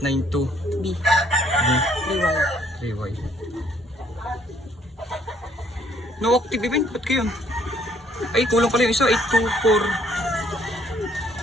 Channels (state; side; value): normal; both; correlation 0.65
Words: B. B 3Y. 3Y. No active event, ba't kayo? Ay, kulang pala yung isa,